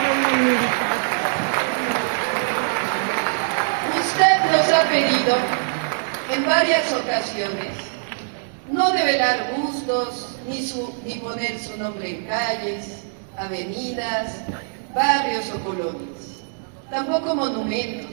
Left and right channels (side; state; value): left; silent; digital silence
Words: hablando de militar. Usted nos ha pedido en varias ocasiones no develar gustos ni poner su nombre en calles, avenidas, barrios o colonias, tampoco